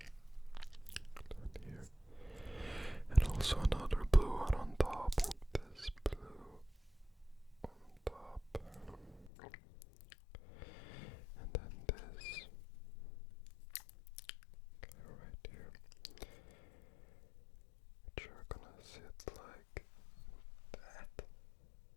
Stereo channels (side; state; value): right; drops out; at 9.3 s